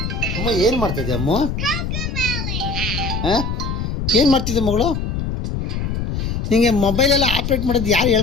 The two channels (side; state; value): left; noise; rumble, 2 dB below the sound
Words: ಅಮ್ಮ ಏನು ಮಾಡ್ತಿದ್ದೆ ಅಮ್ಮ? ಹಾಂ, ಏನು ಮಾಡ್ತಿದ್ದೆ ಮಗಳು? ನಿಮಗೆ ಮೊಬೈಲೆಲ್ಲ ಆಪ್ರೇಟ್ ಮಾಡೋದು ಯಾರು